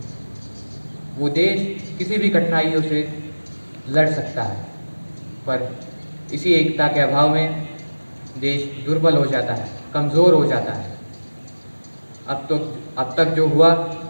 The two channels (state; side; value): inverted; both; correlation -1.00